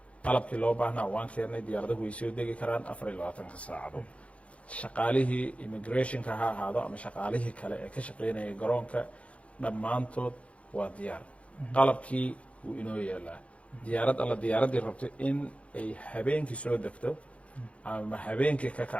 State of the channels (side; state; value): right; late; 0.063 ms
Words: qalabkii loo baahnaa waan keennay diyaaradahu way soo degi karaan 24 saacadood shaqaalihii immigrationka ha ahaado ama shaqaalihii kale ee ka shaqeynaya garoonka dhammaantood waa diyaar qalabkii wuu inoo yeelaa diyaarad alla diyaaraddii rabto in ay habeenkii soo degto ama habeenkii ka